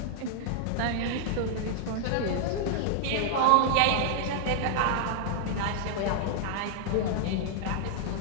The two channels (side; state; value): both; different; correlation -0.01